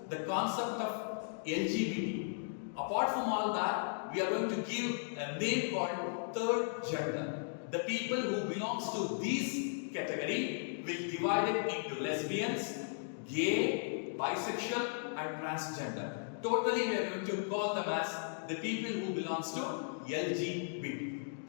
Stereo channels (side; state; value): right; silent; digital silence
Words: the concept of LGBT. Apart from all that, we are going to give a name called third gender. The people who belongs to this category will divide it into lesbians, gay, bisexual and transgender. Totally we are going to call them as the people who belongs to LGBT.